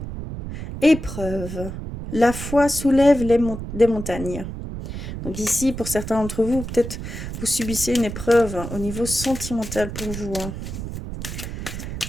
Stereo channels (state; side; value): noise; right; rumble, 7 dB below the sound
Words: épreuve. La foi soulève des montagnes. Donc ici, pour certains d'entre vous, peut-être vous subissez une épreuve au niveau sentimental pour vous, hein.